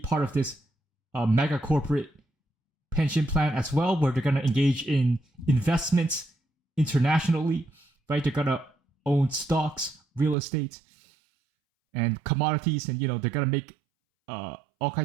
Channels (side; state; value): left; drops out; at 10.4 s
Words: of this mega corporate pension plan as well, where they're gonna engage in investments internationally, right? They're gonna own stocks, real estate, and commodities, and they're gonna make all